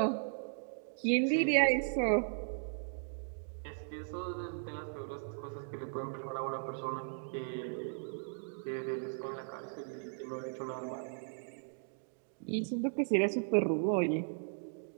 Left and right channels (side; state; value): left; silent; digital silence